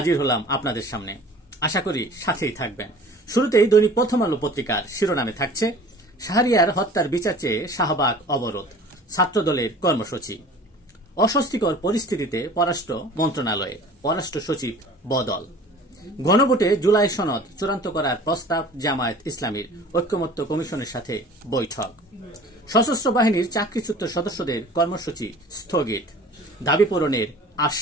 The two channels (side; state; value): both; normal; correlation 0.45